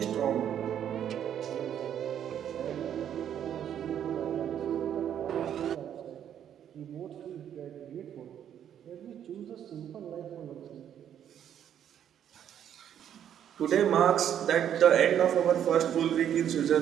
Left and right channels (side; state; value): left; quieter; 9.7 dB